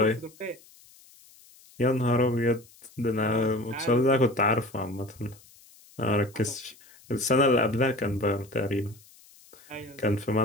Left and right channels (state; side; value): noise; left; hiss, 26 dB below the sound